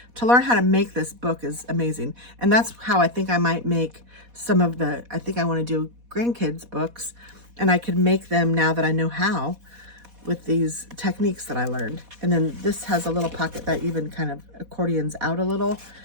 to learn how to make this book is amazing. And that's how I think I might make some of I think I want to do grandkids books, and I could make them now that I know how with these techniques that I learned. And then this has a little pocket that even kind of accordions out a little.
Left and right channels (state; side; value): late; left; 4.1 ms